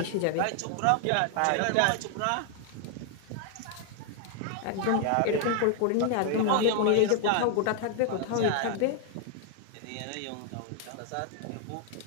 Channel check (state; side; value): different; both; correlation 0.00